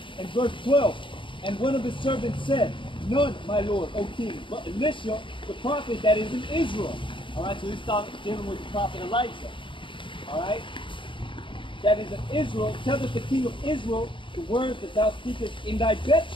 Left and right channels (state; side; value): late; right; 0.24 ms